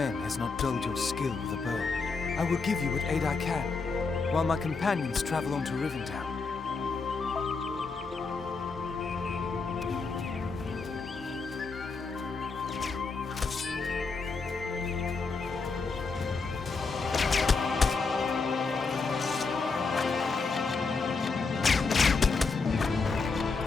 has not dulled your skill with a bow. I will give you what aid I can, while my companions travel on to Rivendell.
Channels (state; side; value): quieter; right; 4.4 dB